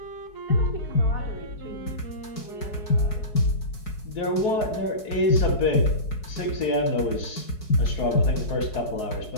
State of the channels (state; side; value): late; right; 4.7 ms